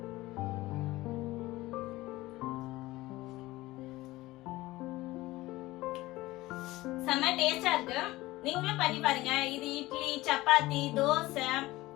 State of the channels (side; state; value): right; quieter; 18.5 dB